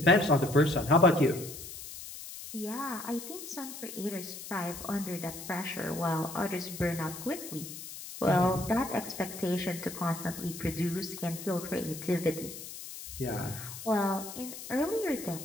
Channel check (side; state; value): left; noise; hiss, 11 dB below the sound